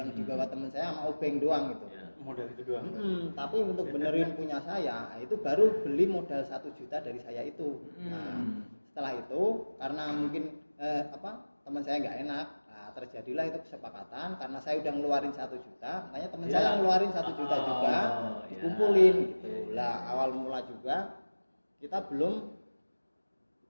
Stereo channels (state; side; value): inverted; both; correlation -1.00